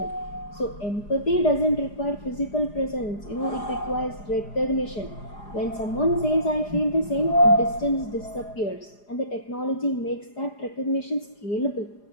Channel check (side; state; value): right; late; 4.9 ms